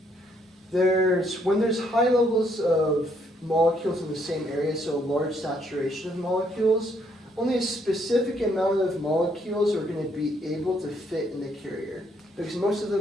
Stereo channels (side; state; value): both; normal; correlation 0.71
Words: there's high levels of molecules in the same area, so a large saturation of molecules, only a specific amount of molecules are going to be able to fit in the carrier, because most of